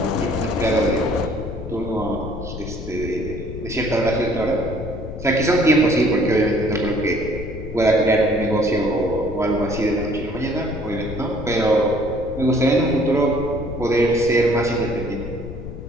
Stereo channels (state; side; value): noise; left; rumble, 9 dB below the sound